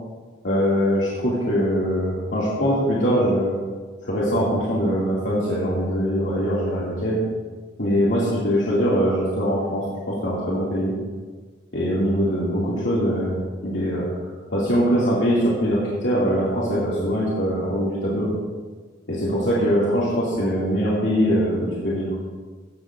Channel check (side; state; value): both; normal; correlation 0.56